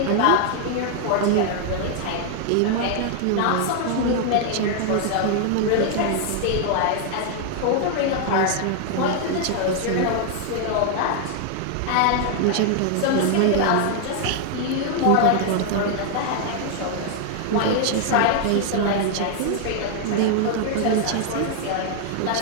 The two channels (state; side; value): different; both; correlation 0.00